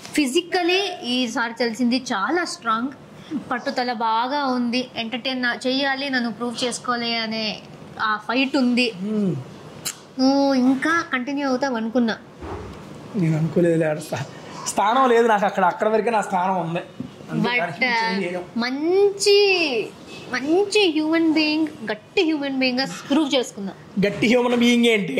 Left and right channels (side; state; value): both; identical; correlation 1.00